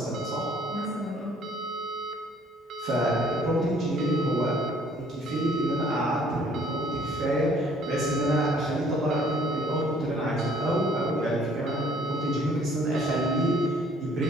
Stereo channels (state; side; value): normal; both; correlation 0.58